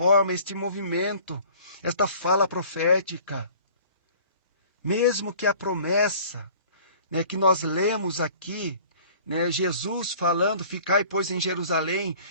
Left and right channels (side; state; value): both; inverted; correlation -0.49